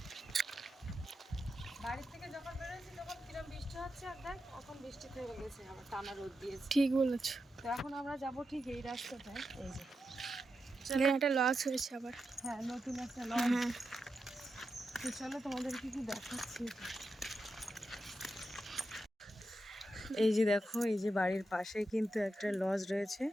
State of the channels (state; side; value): normal; both; correlation 0.88